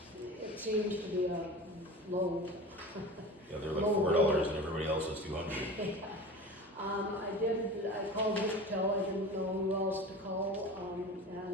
It seems to be a low. Yeah, they're like Low $4 and everybody else is 200. I called Victel, I didn't know who else to call, and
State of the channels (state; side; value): normal; both; correlation 0.34